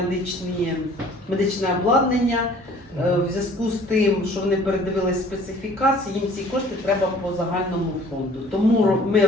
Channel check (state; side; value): normal; both; correlation 0.52